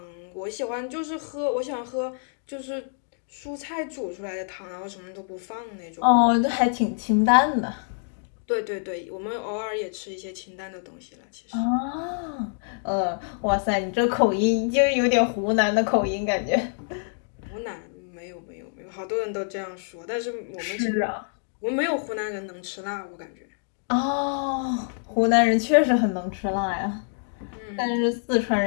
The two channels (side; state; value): right; silent; digital silence